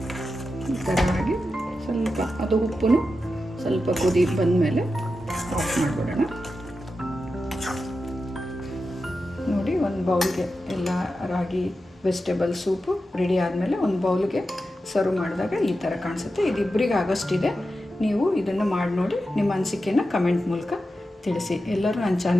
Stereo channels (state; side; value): normal; both; correlation 0.90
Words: ಈ ಥರ ಆಗಿ ಸ್ವಲ್ಪ ಅದು ಉಪ್ಪು ಸ್ವಲ್ಪ ಕುದಿ ಬಂದಮೇಲೆ ಆಫ್ ಮಾಡಿಬಿಡೋಣ. ನೋಡಿ, ಒಂದು ಒಂದು ಬೌಲ್ಗೆ ಎಲ್ಲ ರಾಗಿ ವೆಜಿಟೇಬಲ್ ಸೂಪು ರೆಡಿ ಆದಮೇಲೆ ಒಂದು ಬೌಲ್ಗೆ ಸರ್ವ್ ಮಾಡಿದಾಗ ಈ ಥರ ಕಾಣಿಸುತ್ತೆ. ಇದು ಇಬ್ಬರಿಗೆ ಆಗೋಷ್ಟಿದೆ. ನೀವು ಇದನ್ನು ಮಾಡಿ ನೋಡಿ ನಿಮ್ಮ ಅನಿಸಿಕೆಯನ್ನು ಕಮೆಂಟ್ ಮೂಲಕ ತಿಳಿಸಿ. ಎಲ್ಲರೂ ನನ್ನ